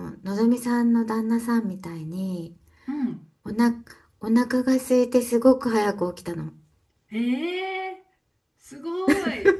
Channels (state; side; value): identical; both; correlation 1.00